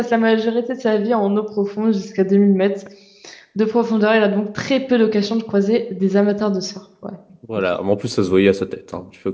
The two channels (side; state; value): both; identical; correlation 1.00